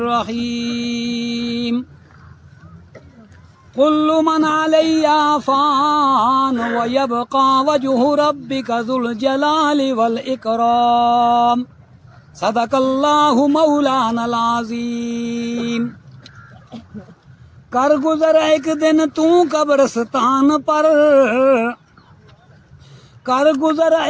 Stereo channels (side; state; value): both; identical; correlation 1.00